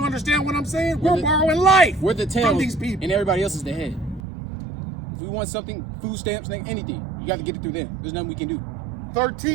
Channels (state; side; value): drops out; left; at 4.2 s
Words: understand what I'm saying? We're the- borrowing life We're the tail, from these people. and everybody else is the head. If we want something, food stamps, anything, you got to get it through them. There's nothing we can do.